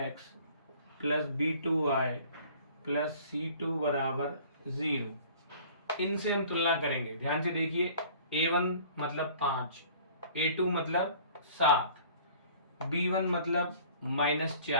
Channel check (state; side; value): inverted; both; correlation -0.50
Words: + b2y + c2 = 0। इनसे हम तुलना करेंगे। ध्यान से देखिए, a1 मतलब 5, a2 मतलब 7, b1 मतलब